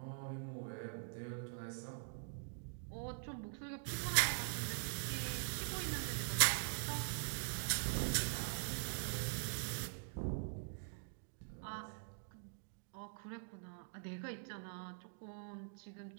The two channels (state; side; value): silent; left; digital silence